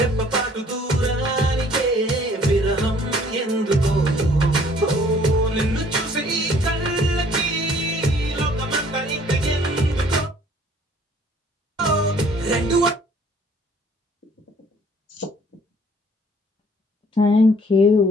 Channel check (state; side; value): normal; both; correlation 0.57